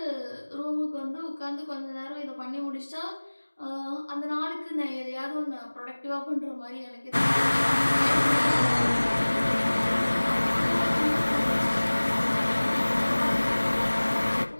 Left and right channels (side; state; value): both; inverted; correlation -1.00